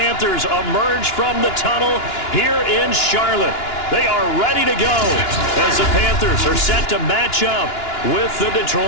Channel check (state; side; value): late; right; 2.9 ms